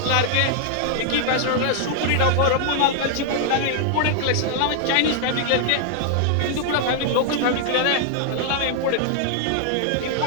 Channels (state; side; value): different; both; correlation 0.00